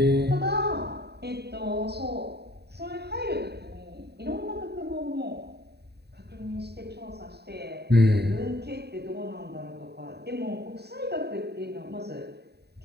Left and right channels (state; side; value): late; left; 0.48 ms